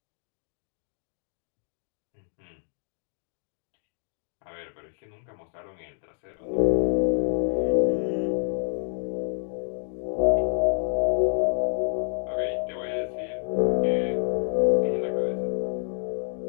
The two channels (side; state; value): right; silent; digital silence